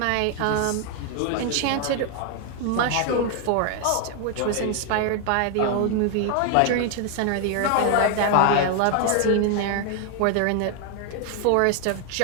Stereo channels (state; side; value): different; both; correlation 0.00